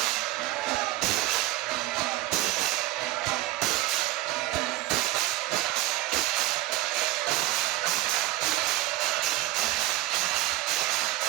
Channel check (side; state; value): left; quieter; 16.6 dB